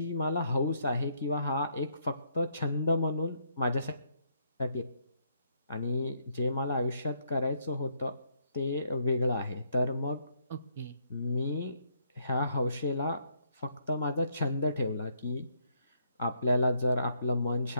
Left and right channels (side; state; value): both; inverted; correlation -0.72